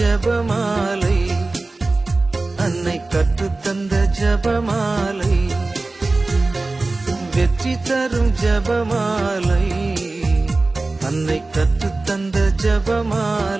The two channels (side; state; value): left; quieter; 3.3 dB